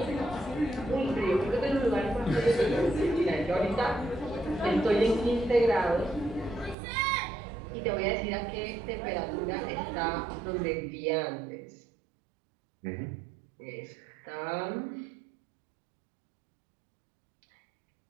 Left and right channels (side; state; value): left; drops out; at 6.8 s